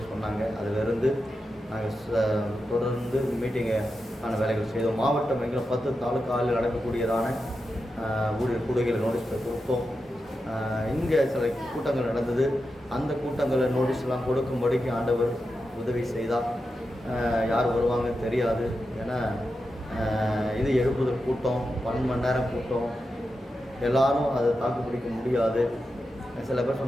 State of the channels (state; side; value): normal; both; correlation 0.89